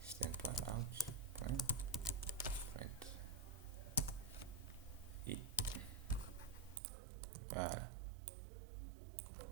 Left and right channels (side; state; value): left; drops out; at 6.8 s